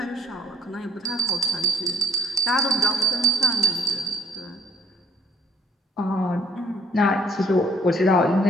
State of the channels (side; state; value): both; normal; correlation 0.63